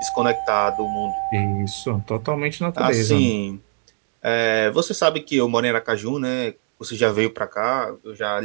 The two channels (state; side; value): silent; left; digital silence